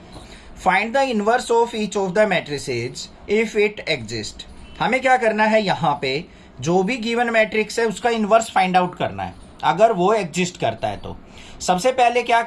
Find the inverse of each of the matrices if it exist. हमें क्या करना है, यहाँ पे जो भी गिवन मैट्रिक्स है उसका इनवर्स फाइंड आउट करना है, अगर वो एग्जिस्ट करता है तो। सबसे पहले क्या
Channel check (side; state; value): both; identical; correlation 1.00